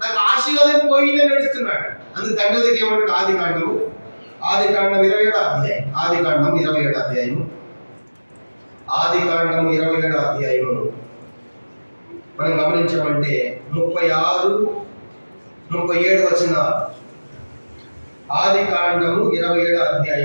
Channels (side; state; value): both; inverted; correlation -1.00